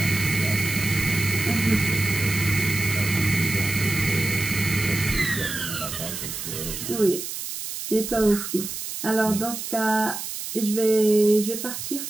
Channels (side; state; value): right; noise; hiss, 7 dB below the sound